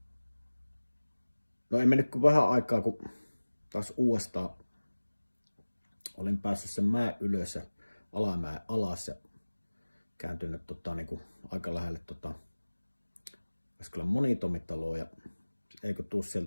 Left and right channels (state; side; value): inverted; both; correlation -1.00